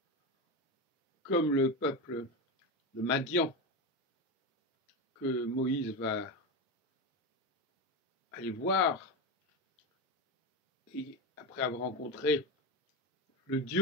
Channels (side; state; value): both; normal; correlation 0.17